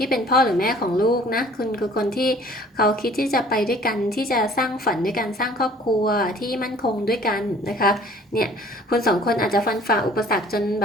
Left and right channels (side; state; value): both; normal; correlation 0.52